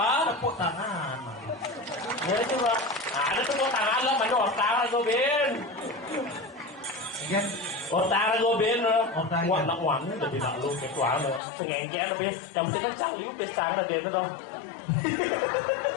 Tepuk tangan. Ya coba. Ada tepuk tangan lo mana otak gue bin. Kan? Otak gue bin lo. Otak. Wah nak wangi jadi nak lu ketua lo. Pengengkel lo bin. Yang penting kan cang lu besar lah dia tuh.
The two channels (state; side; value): drops out; right; at 11.4 s